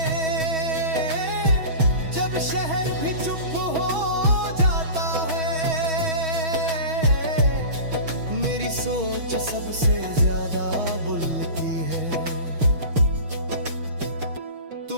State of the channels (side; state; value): left; late; 6.2 ms